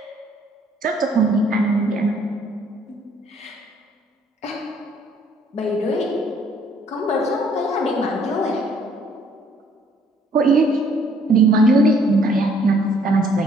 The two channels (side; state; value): both; normal; correlation 0.63